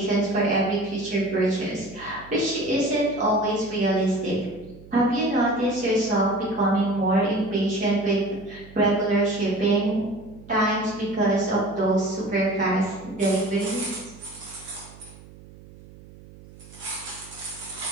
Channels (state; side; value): noise; right; hum, 20 dB below the sound